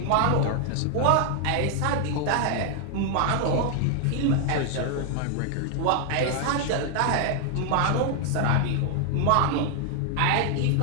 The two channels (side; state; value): both; different; correlation 0.00